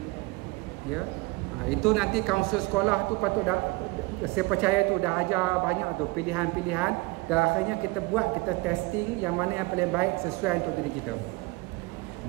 Ya. Itu nanti kaunselor sekolah tu patut dah, saya percaya tu dah ajar banyak tu pilihan-pilihan, dan akhirnya kita buat, kita testing yang mana yang paling baik sesuai untuk diri kita.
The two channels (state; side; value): quieter; left; 24.1 dB